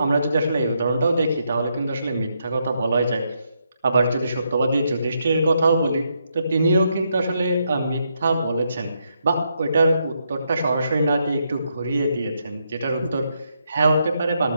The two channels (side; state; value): both; inverted; correlation -0.79